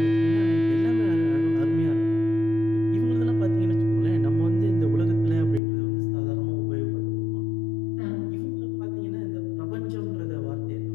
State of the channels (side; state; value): right; drops out; at 5.6 s